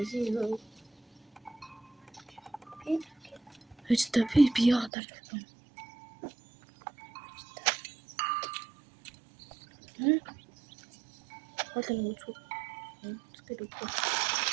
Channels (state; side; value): drops out; left; at 4.9 s